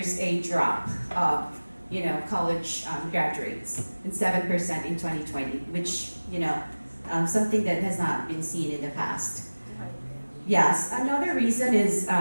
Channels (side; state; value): both; inverted; correlation -1.00